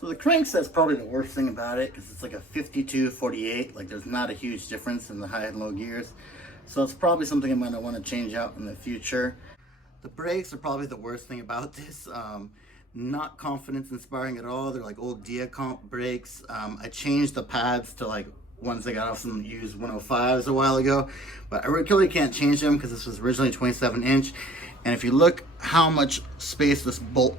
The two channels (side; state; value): both; normal; correlation 0.51